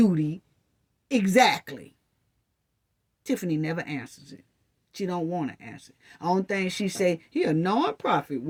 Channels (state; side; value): identical; both; correlation 1.00